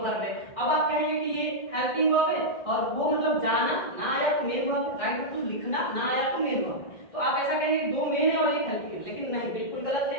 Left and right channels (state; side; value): late; right; 1.6 ms